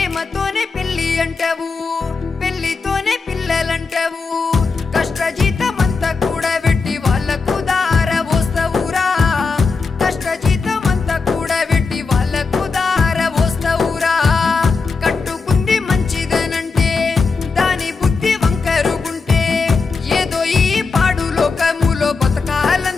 పెళ్లి అంటావు పెళ్లితోనే పిల్లలంటావు కష్టజీతమంతా కూడా పెట్టి వాళ్ళకు దార పోస్తావురా కష్టజీతమంతా కూడా పెట్టి వాళ్ళకు దార పోస్తావురా కట్టుకుంది మంచిదనంటే దాని బుద్ధి వంకరుగుంటే ఏదో ఈ పాడు లోకములో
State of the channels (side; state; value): right; quieter; 4.5 dB